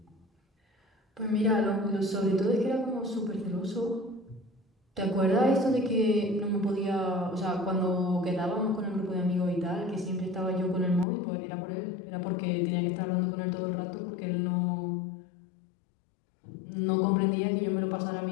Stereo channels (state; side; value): drops out; right; at 11.1 s